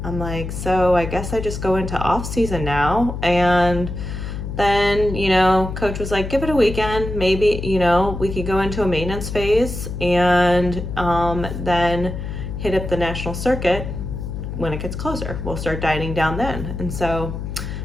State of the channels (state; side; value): noise; left; hum, 6 dB below the sound